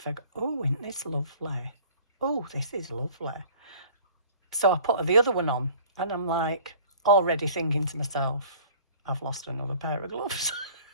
"Oh, isn't this lovely? Oh, this is lovely." So I put her the other one on and I'm like, already thinking to myself, I've lost another pair of gloves.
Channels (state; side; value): inverted; both; correlation -0.49